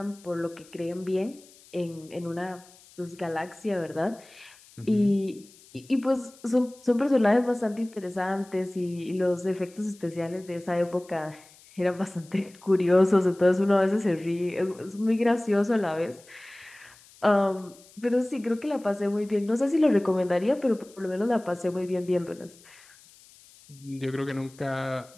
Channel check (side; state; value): left; noise; hiss, 25 dB below the sound